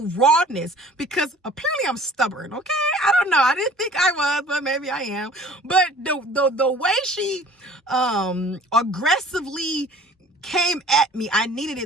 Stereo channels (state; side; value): normal; both; correlation 0.49